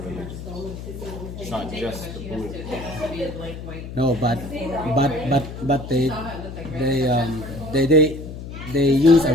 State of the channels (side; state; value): left; noise; hum, 10 dB below the sound